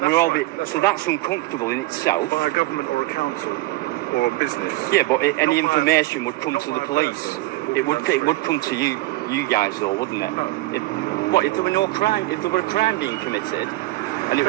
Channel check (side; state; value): left; quieter; 18.7 dB